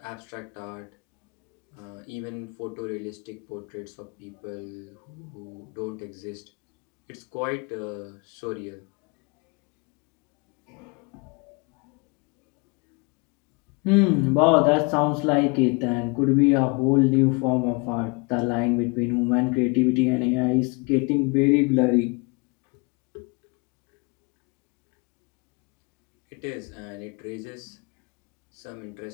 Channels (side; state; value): right; quieter; 30.4 dB